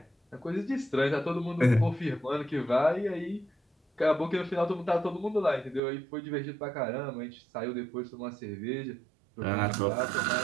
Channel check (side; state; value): left; drops out; at 5.8 s